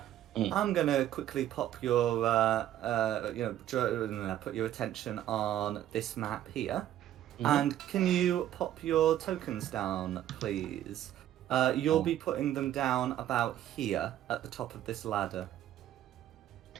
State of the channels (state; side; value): quieter; left; 12.1 dB